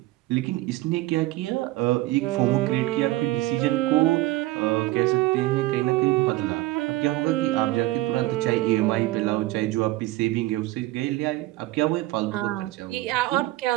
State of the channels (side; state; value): left; quieter; 17.9 dB